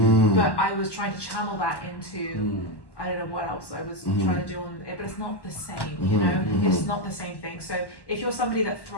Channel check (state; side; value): late; right; 1.1 ms